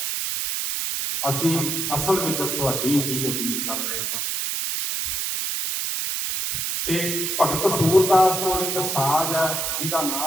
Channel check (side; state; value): right; noise; hiss, 1 dB below the sound